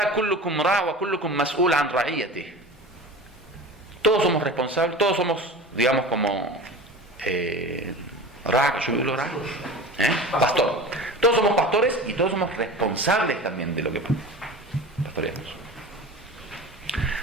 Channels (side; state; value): both; normal; correlation 0.35